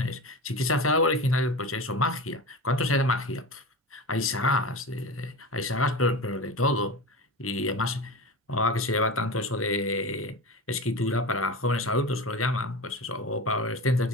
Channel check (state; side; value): normal; both; correlation 0.28